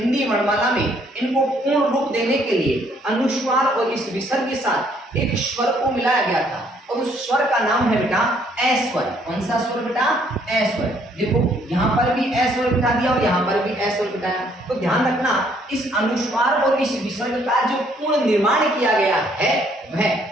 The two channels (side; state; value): both; normal; correlation 0.66